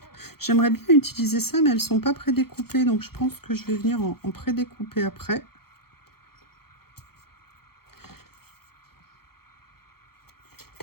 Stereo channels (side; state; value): right; late; 0.95 ms